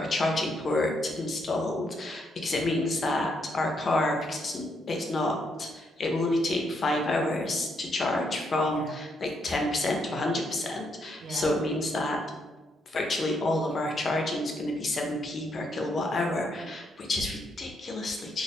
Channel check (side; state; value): both; normal; correlation 0.76